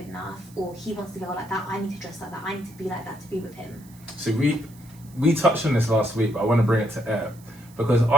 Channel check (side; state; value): right; noise; hiss, 25 dB below the sound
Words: enough, or he wants to go like that, I need to dress like that, I need to be like that to be with him. So we touched on this last week, but I want to bring it to air because